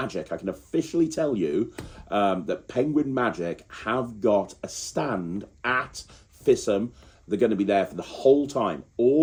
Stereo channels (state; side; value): identical; both; correlation 1.00